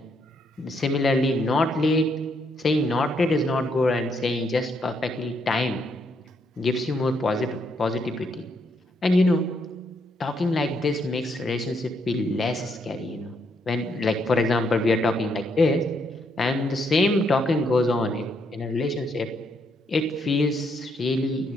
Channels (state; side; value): normal; both; correlation 0.75